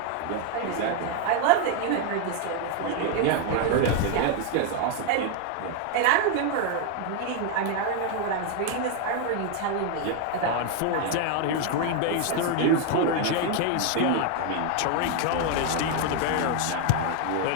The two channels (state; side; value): different; both; correlation 0.01